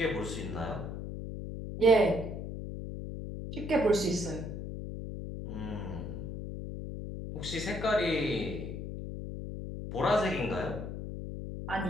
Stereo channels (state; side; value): noise; left; hum, 6 dB below the sound